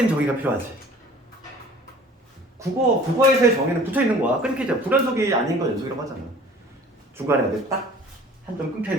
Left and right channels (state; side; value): normal; both; correlation 0.48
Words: 정의가 필요하지. 국어에서의 정의는 붙어 있는 거야. 끊기죠. 불연속이 아닌 건 연속이라고 하잖아. 중간에 딱 한 점 끊겨